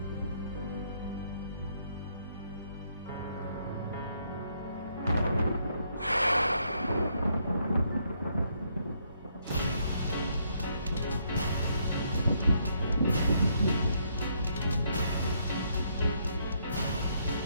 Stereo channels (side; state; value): both; inverted; correlation -0.73